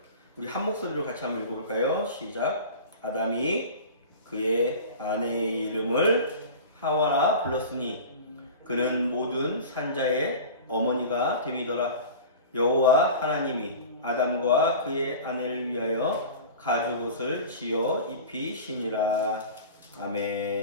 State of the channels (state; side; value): inverted; both; correlation -0.36